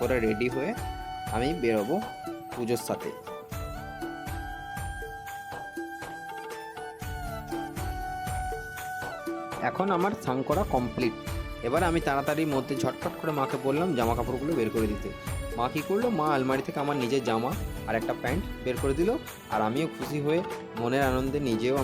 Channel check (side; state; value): both; identical; correlation 1.00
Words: রেডি হয়ে আমি বেরোবো পুজোর সাথে। এখন আমার স্নান করা কমপ্লিট। এবার আমি তাড়াতাড়ির মধ্যে ঝটপট করে মাকে বললাম জামা কাপড়গুলো বের করে দিতে। মা কী করলো, মা আলমারি থেকে আমার নিজের জামা আর একটা প্যান্ট বের করে দিল। আর আমিও খুশি হয়ে মনের আনন্দে নিজেও